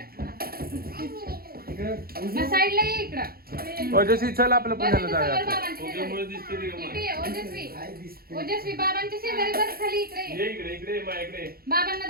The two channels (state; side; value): late; left; 0.44 ms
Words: साईडला ये इकडं. ओजस्वी चल आपलं पुण्याला जाऊया ओजस्वी बाबांच्या शेजारी बस खाली इकडे ये. इकडे इकडे माझ्याकडे बाबांना